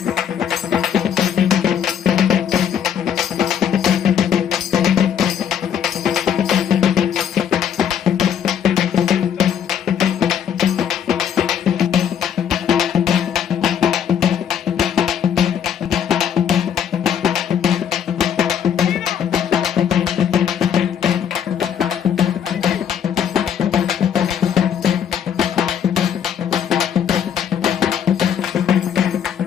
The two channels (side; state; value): right; quieter; 8.7 dB